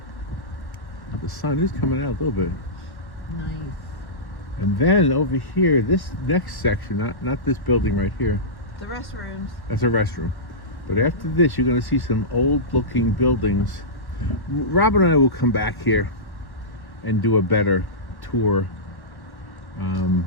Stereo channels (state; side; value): late; right; 1.1 ms